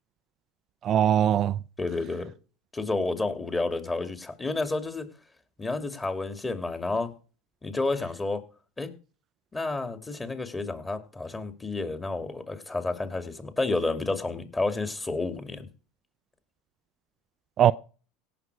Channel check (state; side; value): normal; both; correlation 0.75